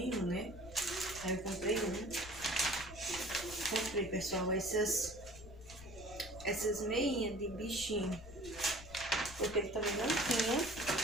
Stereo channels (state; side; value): noise; left; rumble, 16 dB below the sound